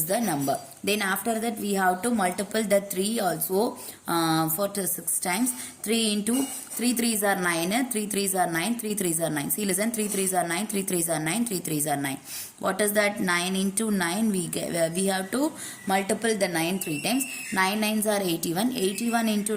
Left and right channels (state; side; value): identical; both; correlation 1.00